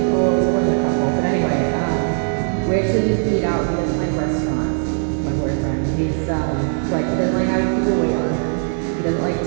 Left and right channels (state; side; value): silent; left; 59 dB below the other